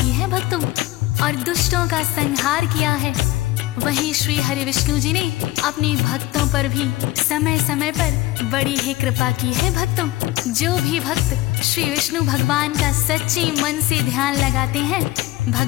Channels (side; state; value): right; quieter; 17.9 dB